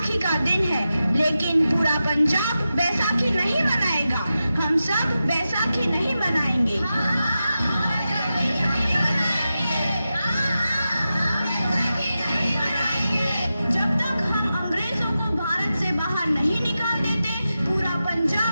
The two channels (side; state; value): both; inverted; correlation -0.91